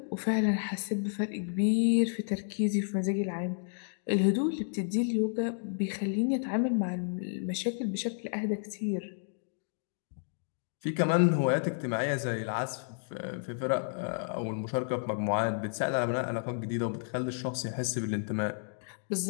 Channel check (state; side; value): silent; right; digital silence